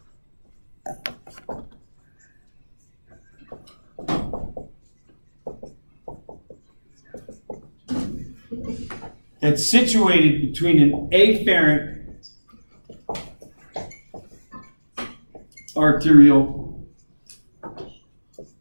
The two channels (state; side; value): inverted; both; correlation -1.00